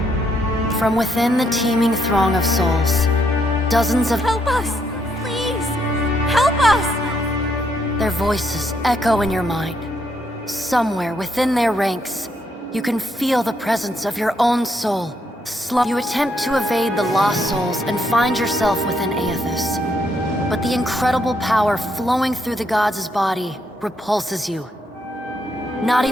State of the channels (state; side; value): normal; both; correlation 0.75